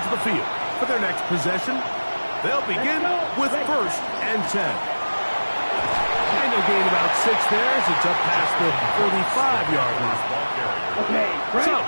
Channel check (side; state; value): both; inverted; correlation -1.00